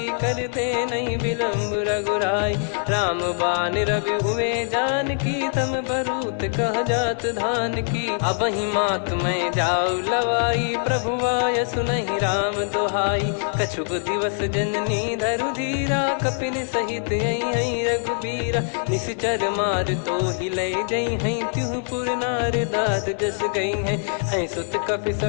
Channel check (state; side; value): silent; right; digital silence